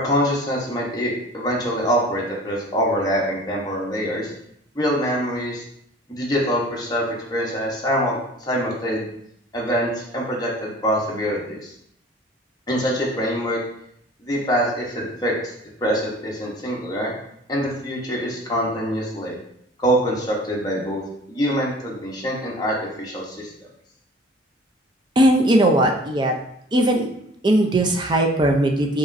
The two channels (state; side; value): normal; both; correlation 0.47